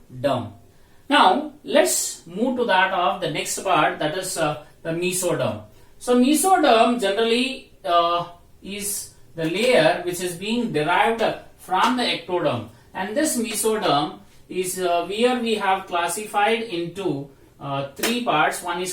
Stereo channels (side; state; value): both; identical; correlation 1.00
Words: Now let's move to that of the next part, that is the mesoderm. So mesoderm generally is the layer which is being derived from the ectoderm, and this mesoderm is where we have classified into three parts. One